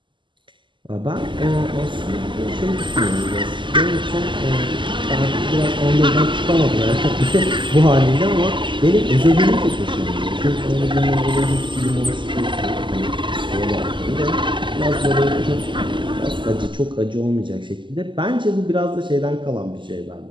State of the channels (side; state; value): left; late; 0.24 ms